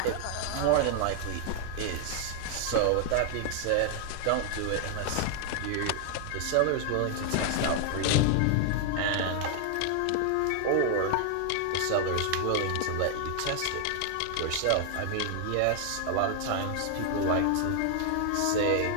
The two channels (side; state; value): both; different; correlation 0.00